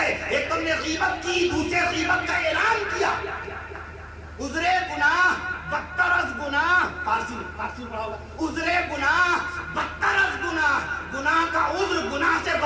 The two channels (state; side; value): identical; both; correlation 1.00